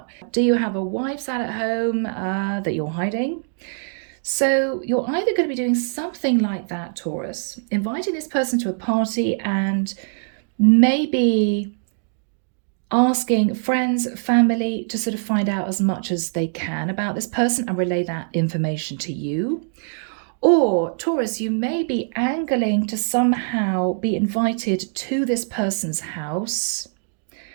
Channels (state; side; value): silent; left; digital silence